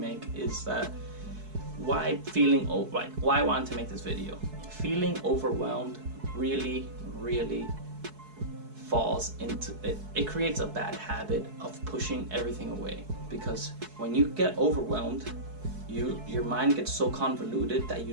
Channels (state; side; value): late; left; 4.7 ms